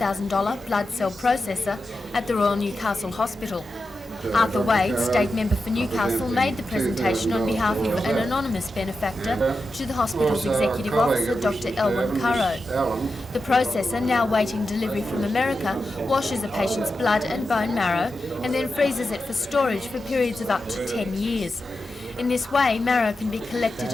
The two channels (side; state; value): both; normal; correlation 0.90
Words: blood cell processor at the Royal Newcastle Hospital. Arthur Wade, State Member for Newcastle, made the presentation on behalf of an anonymous benefactor to the hospital's Executive Officer, Dr. Elwyn Currow. The processor, now waiting delivery from America, washes a patient's blood and bone marrow and then freezes it for storage for periods of up to 10 years. In this way, marrow can be collected